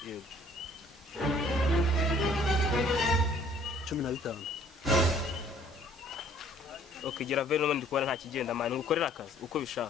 yego 15 okay gira veno n'undi kubona nta kigenda man ngukorera akazi uko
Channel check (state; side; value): normal; both; correlation 0.58